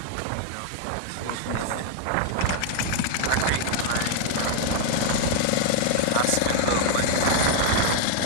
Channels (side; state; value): both; different; correlation 0.00